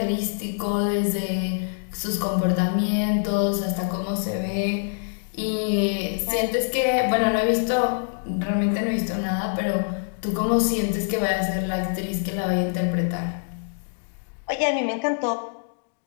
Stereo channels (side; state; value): right; silent; digital silence